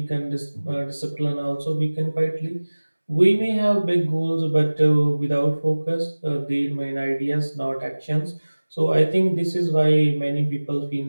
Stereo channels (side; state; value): both; inverted; correlation -1.00